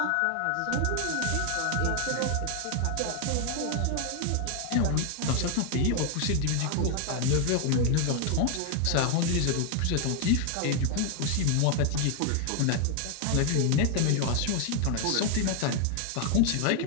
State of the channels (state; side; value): different; both; correlation 0.00